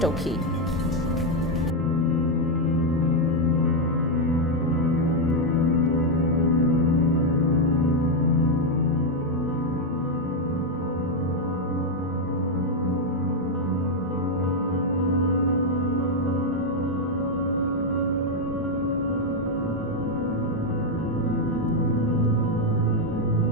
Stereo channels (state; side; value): normal; both; correlation 0.02